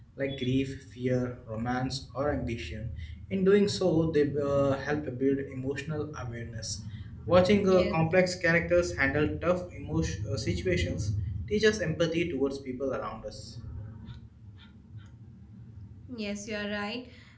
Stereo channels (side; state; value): both; identical; correlation 1.00